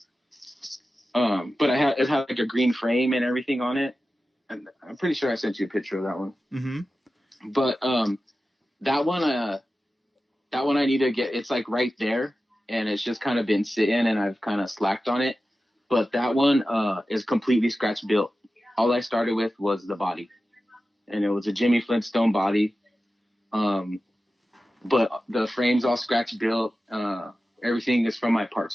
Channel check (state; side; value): normal; both; correlation 0.94